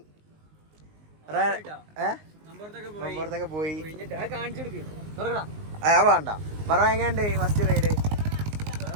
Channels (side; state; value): left; late; 19 ms